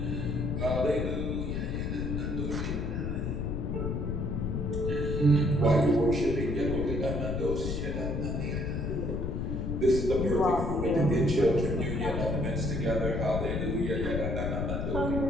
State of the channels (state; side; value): noise; left; rumble, 1 dB below the sound